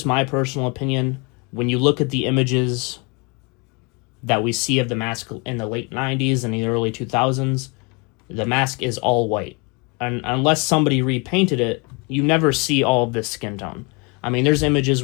my personal opinion. When you look at the images that we see of the mask in the late 90s and the early 2000s, the mask is all white. And unless somebody repainted it, you never see all of this skin tone. I mean, there's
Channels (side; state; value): right; quieter; 31.0 dB